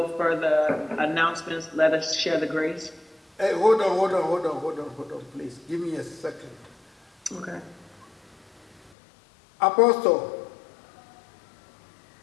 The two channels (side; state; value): right; drops out; at 8.9 s